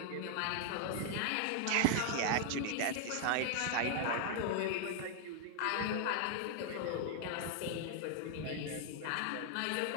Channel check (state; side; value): different; both; correlation 0.00